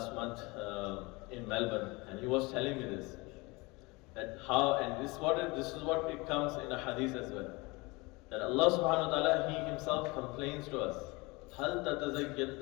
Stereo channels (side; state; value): right; quieter; 25.0 dB